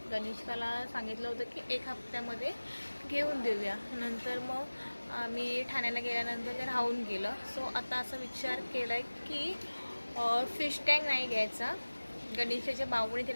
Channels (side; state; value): both; inverted; correlation -1.00